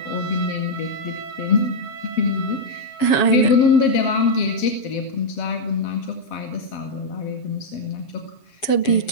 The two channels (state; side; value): late; right; 7.1 ms